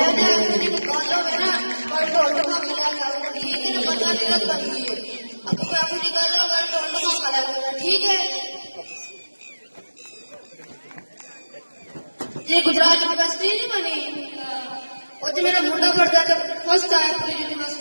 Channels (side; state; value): both; inverted; correlation -1.00